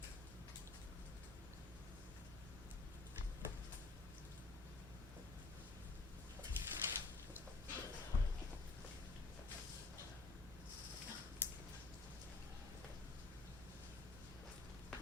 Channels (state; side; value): quieter; right; 3.5 dB